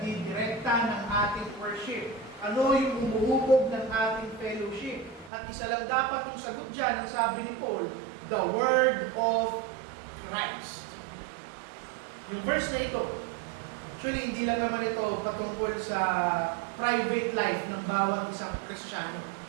ng ating worship? Ano yung umuhubog ng ating fellowship? At isa lang dapat yung sagot dyan, ang sabi ni Paul, the Word of Christ. Yung verse na ito, actually hindi lang naman ito patungkol sa private life ng bawat isang Kristiyano.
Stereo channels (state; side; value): drops out; left; at 5.3 s